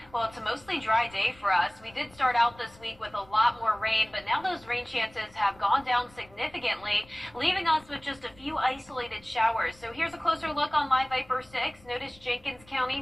Well, it's a mostly dry day for us. We did start out this week with a lot more rain, but now those rain chances have gone down significantly, leaving us with just a few isolated showers. So here's a closer look on Live Viper 6. Notice Jenkins County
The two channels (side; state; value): left; noise; rumble, 26 dB below the sound